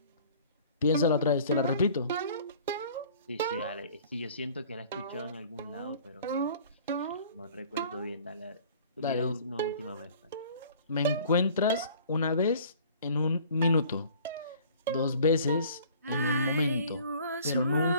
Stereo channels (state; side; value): inverted; both; correlation -0.50